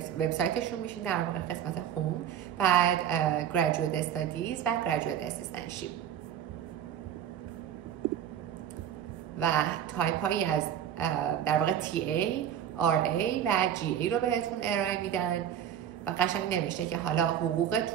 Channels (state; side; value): quieter; left; 9.7 dB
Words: وبسایتشون میشین، در واقع قسمت هوم، بعد گریجویت استادیز و گریجویت اسیستنتشیپ و تایپ هایی از در واقع TA، RA و GA رو بهتون ارائه میدن و قشنگ نوشته که حالا